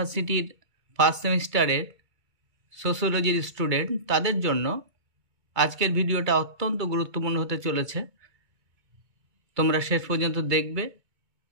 ফার্স্ট সেমিস্টারের সোশিওলজির স্টুডেন্ট, তাদের জন্য আজকের ভিডিওটা অত্যন্ত গুরুত্বপূর্ণ হতে চলেছে। তোমরা শেষ পর্যন্ত দেখবে।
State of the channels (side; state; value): left; late; 2.3 ms